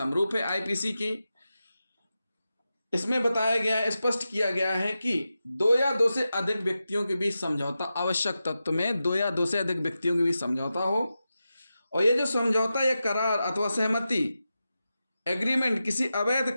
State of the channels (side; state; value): both; inverted; correlation -0.91